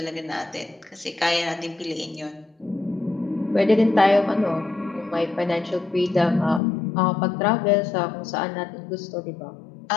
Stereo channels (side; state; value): right; drops out; at 6.6 s